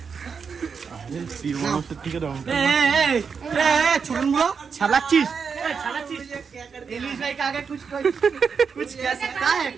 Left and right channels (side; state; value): left; quieter; 5.9 dB